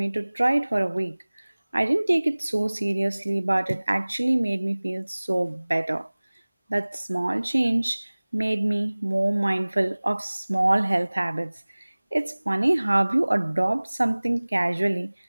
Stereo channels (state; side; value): inverted; both; correlation -1.00